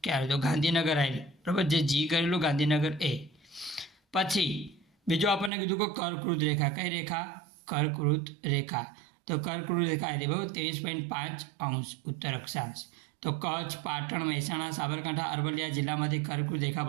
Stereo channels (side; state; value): left; drops out; at 5.5 s